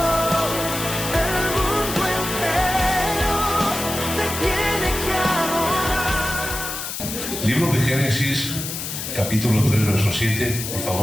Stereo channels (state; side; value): noise; left; hiss, 6 dB below the sound